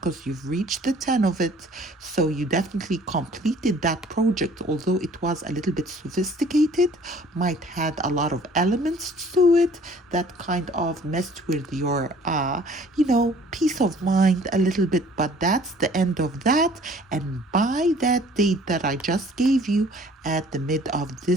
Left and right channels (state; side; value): normal; both; correlation 0.54